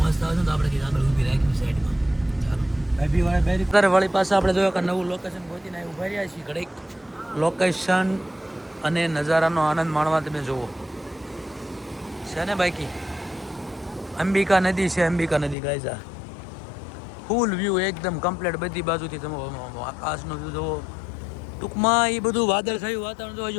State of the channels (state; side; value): drops out; right; at 15.6 s